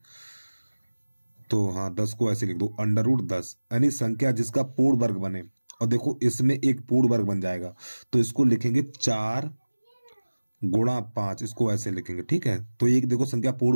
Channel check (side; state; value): both; inverted; correlation -1.00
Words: तो हाँ, 10 को ऐसे लिख दो, √10 यानी संख्या जिसका पूर्ण वर्ग बने। और देखो इसमें एक पूर्ण वर्ग बन जाएगा तो इसको लिखेंगे 4 × 5, इसको ऐसे लिखेंगे। ठीक है, तो एक देखो संख्या